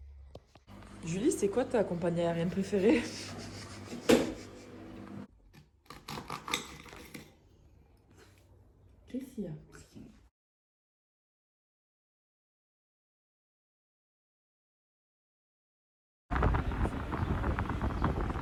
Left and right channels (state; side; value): identical; both; correlation 1.00